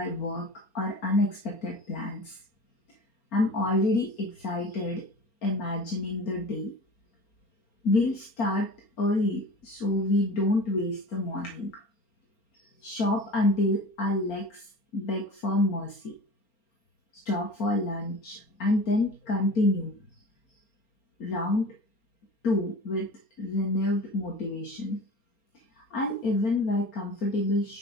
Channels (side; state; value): right; late; 4.3 ms